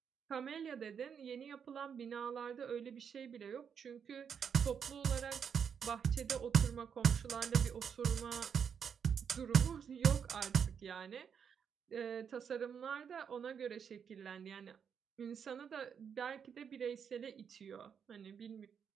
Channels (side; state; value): left; quieter; 7.2 dB